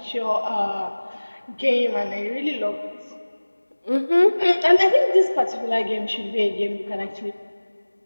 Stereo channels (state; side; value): inverted; both; correlation -1.00